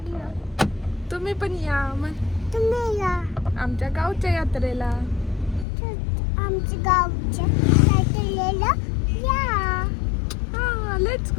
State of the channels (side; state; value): right; drops out; at 5.7 s